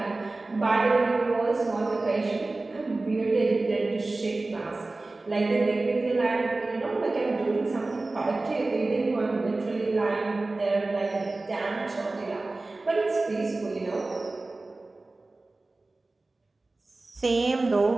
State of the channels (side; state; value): left; quieter; 3.2 dB